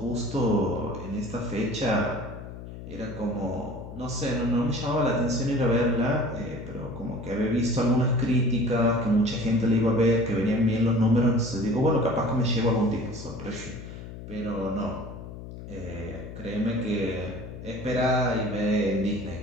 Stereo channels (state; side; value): noise; left; hum, 12 dB below the sound